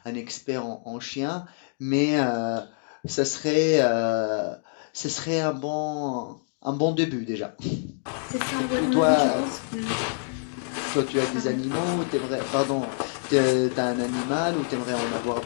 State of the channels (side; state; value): right; silent; digital silence